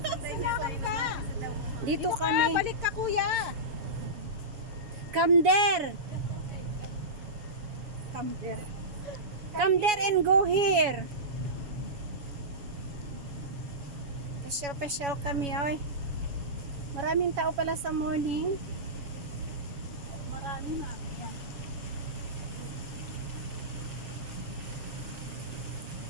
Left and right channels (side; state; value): left; late; 7.2 ms